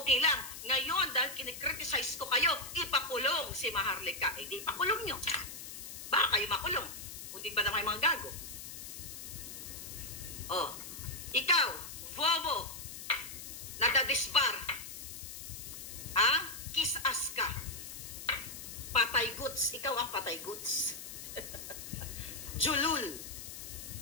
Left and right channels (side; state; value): left; noise; hiss, 10 dB below the sound